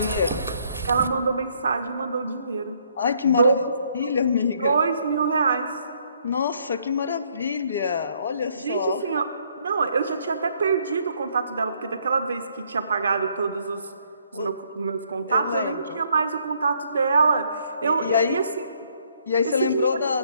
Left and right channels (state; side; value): inverted; both; correlation -0.68